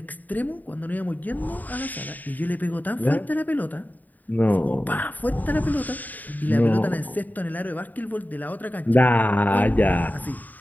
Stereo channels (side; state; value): right; late; 0.083 ms